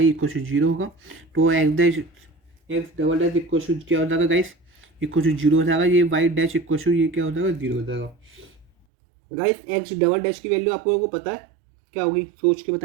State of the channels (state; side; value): drops out; left; at 8.7 s